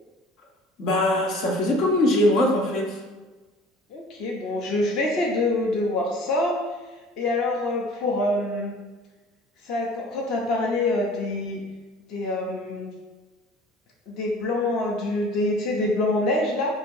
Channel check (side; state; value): both; normal; correlation 0.47